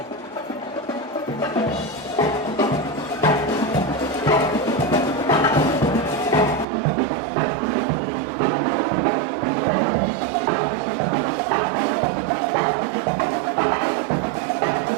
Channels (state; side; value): drops out; left; at 6.7 s